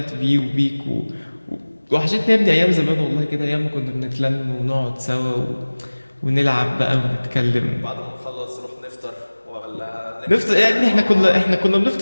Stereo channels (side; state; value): both; inverted; correlation -1.00